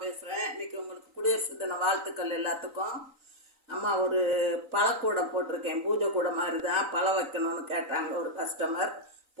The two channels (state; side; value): late; left; 3.9 ms